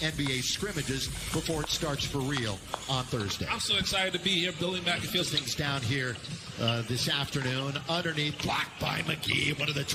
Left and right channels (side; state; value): both; identical; correlation 1.00